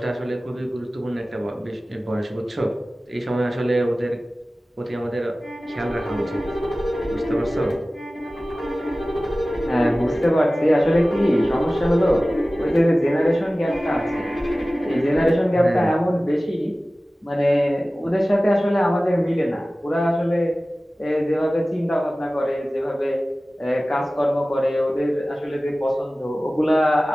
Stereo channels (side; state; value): both; normal; correlation 0.97